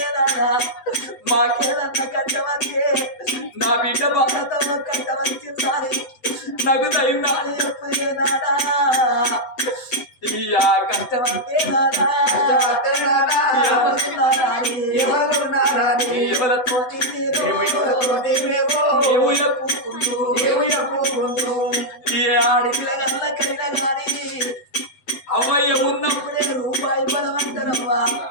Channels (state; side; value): late; right; 7.9 ms